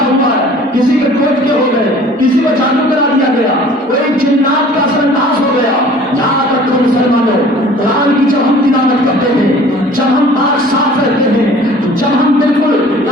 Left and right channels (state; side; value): normal; both; correlation 0.49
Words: ہوا ہے، کسی کے ٹوٹ کے ہو گئے، کسی کو جادو کرا دیا گیا، کوئی جنات کا اثر انداز ہو گیا. یہاں تک تو مسلمانوں قرآن کی جب ہم تلاوت کرتے ہیں، جب ہم پاک صاف رہتے ہیں، جب ہم بالکل